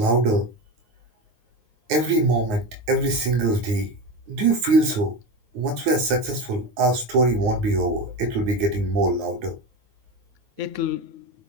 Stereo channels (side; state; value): left; late; 9.4 ms